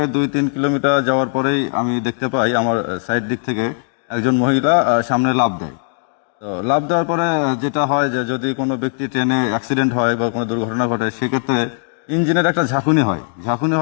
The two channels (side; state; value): right; silent; digital silence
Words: 2-3 kilometre যাওয়ার পরেই আমি দেখতে পাই আমার সাইড দিক থেকে একজন মহিলা সামনে লাফ দেয়। তো লাফ দেওয়ার পরে যেটা হয় যে যদি কোনো ব্যক্তি ট্রেনে অ্যাক্সিডেন্ট হয় বা কোনো দুর্ঘটনা ঘটে, সেক্ষেত্রে ইঞ্জিনের একটা ঝাঁকুনি